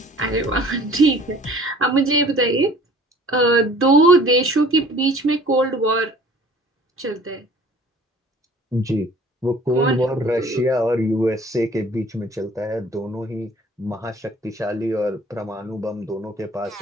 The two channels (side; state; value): both; normal; correlation 0.50